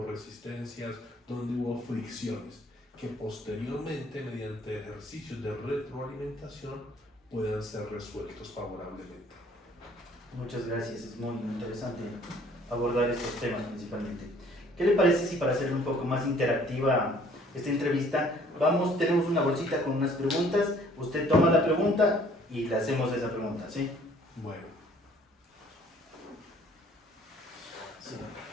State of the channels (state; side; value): normal; both; correlation 0.58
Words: resistencias, dónde hubo fricciones, que posteriormente, mediante ejercicios de retroalimentación, puedan ser resueltos favorablemente. Muchas gracias, es muy interesante abordar estos temas principalmente. ¿Qué le parece si para hacer un poco más interactiva esta entrevista, tenemos una bolsita con unas preguntas, usted toma la pregunta y le hacemos esa pregunta, ¿sí? Bueno. Sí.